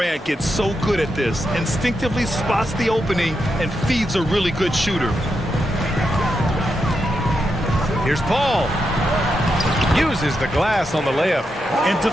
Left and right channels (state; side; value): normal; both; correlation 0.85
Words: get so good at this, instinctively spots the opening and feeds a really good shooter. Here's Paul. Uses the glass on the layup. And